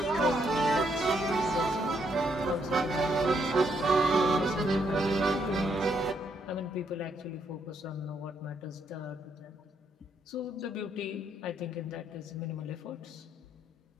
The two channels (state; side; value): normal; both; correlation 0.74